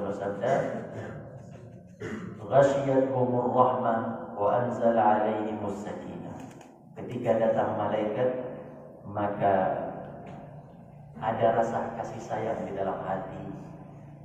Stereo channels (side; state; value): both; identical; correlation 1.00